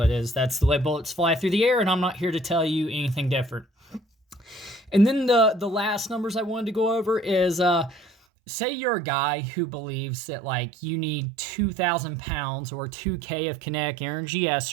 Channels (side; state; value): left; drops out; at 8.1 s